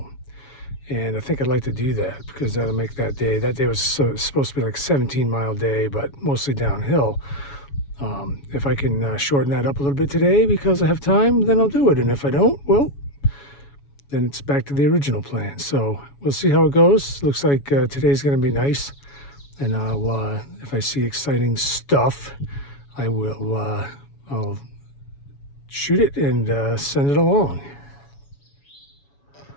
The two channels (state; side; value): late; right; 7.1 ms